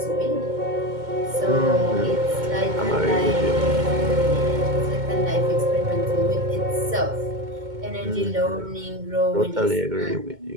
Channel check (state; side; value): late; left; 2.2 ms